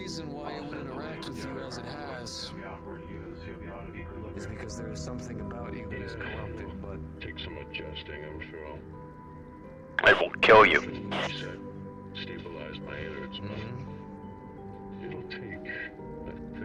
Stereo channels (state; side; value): identical; both; correlation 1.00